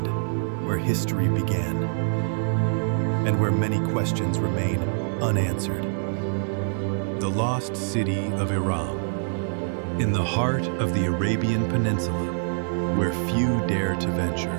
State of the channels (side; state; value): left; silent; 56 dB below the other